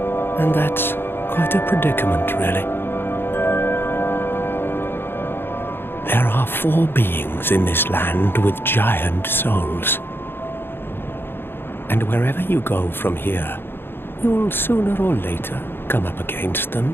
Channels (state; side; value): late; right; 0.10 ms